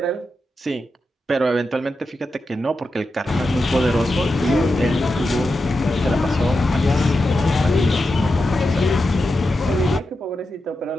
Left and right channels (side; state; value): both; normal; correlation 0.89